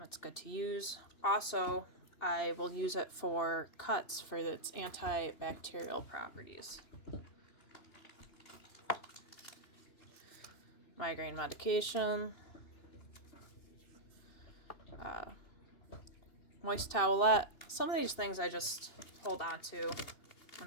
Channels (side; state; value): right; late; 2.7 ms